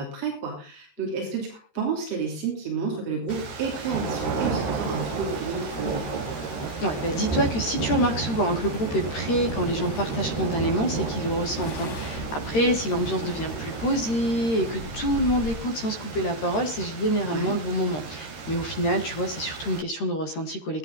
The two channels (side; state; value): right; late; 13 ms